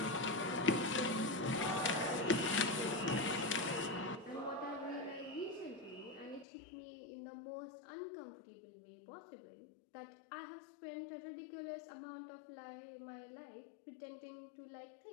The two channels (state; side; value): drops out; right; at 6.5 s